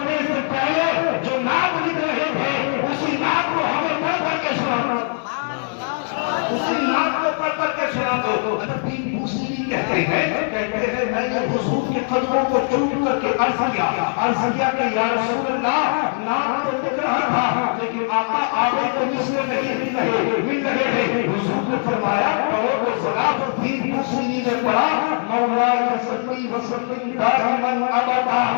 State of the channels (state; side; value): silent; right; 60 dB below the other